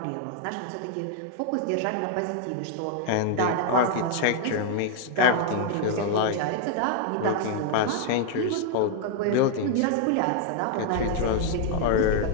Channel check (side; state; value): both; different; correlation 0.00